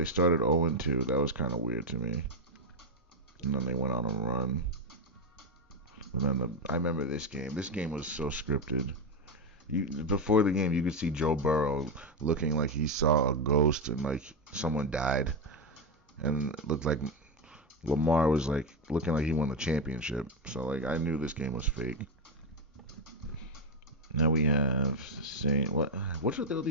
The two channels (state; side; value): normal; both; correlation 0.08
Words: started 0-2. That was kind of weird to me. And then they went on a run. And then I remember this game. This game was so scripted. Before the game, you could see Joe Burrow looking like he saw a ghost and like someone died. And it looked like Lamar was like looking like he won the championship. So like I knew this game was fake. Now we have Saints. What's with all